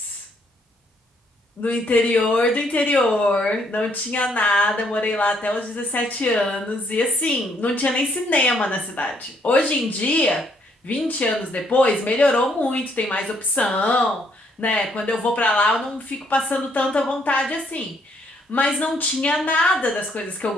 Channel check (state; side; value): normal; both; correlation 0.70